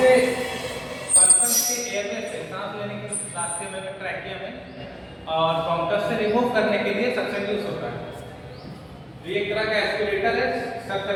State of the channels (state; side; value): identical; both; correlation 1.00